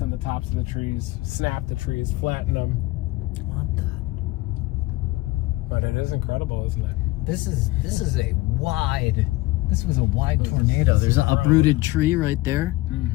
on the tops of the trees, snap the trees, flatten them. What the? But it is incredible, isn't it? This was a wide tornado. There's an uprooted tree right there.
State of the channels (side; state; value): right; quieter; 19.4 dB